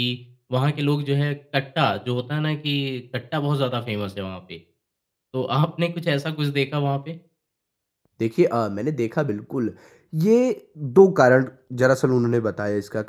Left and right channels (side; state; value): both; identical; correlation 1.00